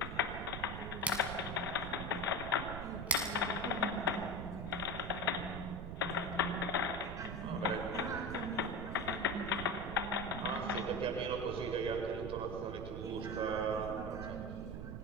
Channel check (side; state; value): right; noise; rumble, 6 dB below the sound